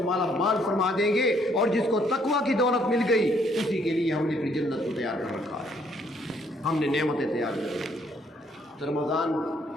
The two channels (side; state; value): both; normal; correlation 0.67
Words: مالا مال فرما دیں گے، اور جس کو تقویٰ کی دولت مل گئی اسی کے لیے ہم نے پھر جنت کو تیار کر رکھا ہے، ہم نے نعمتیں تیار کر رکھی۔ تو رمضان